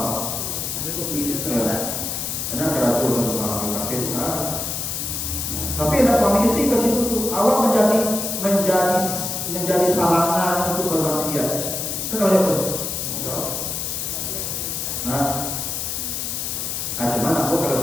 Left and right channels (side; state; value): left; noise; hiss, 3 dB below the sound